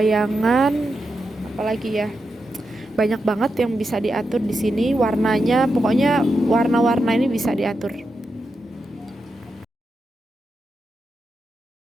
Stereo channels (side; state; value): both; normal; correlation 0.87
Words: Apalagi ya, banyak banget yang bisa diatur di sini. Warnanya, pokoknya warna-warna ini bisa diatur.